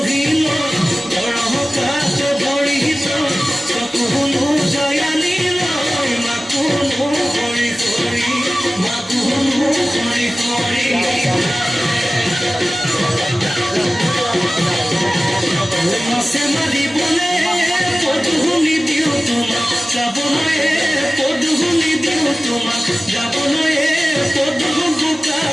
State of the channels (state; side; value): normal; both; correlation 0.97